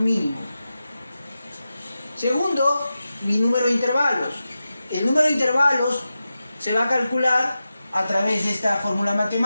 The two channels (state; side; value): inverted; both; correlation -0.92